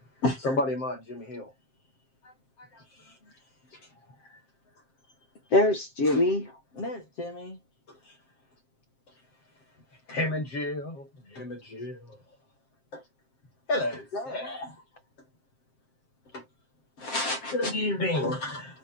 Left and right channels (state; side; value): late; right; 7.6 ms